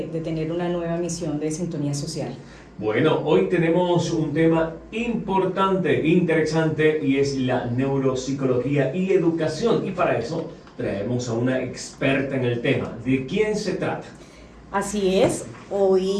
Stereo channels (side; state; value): both; identical; correlation 1.00